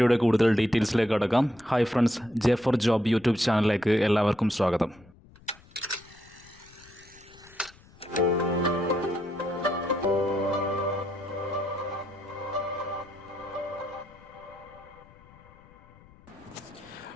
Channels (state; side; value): noise; left; rumble, 25 dB below the sound